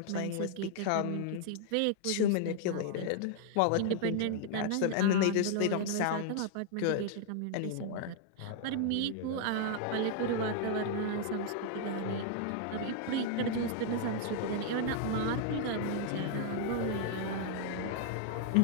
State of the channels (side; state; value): both; different; correlation 0.00